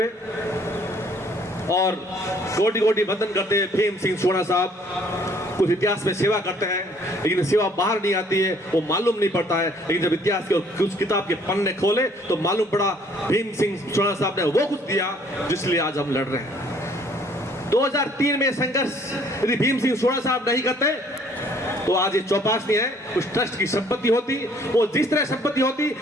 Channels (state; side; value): normal; both; correlation 0.60